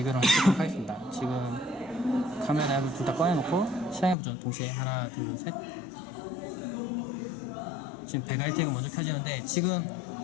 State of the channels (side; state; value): right; drops out; at 4.2 s